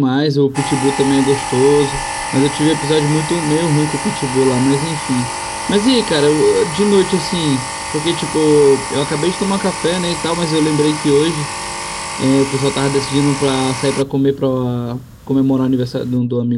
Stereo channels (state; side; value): identical; both; correlation 1.00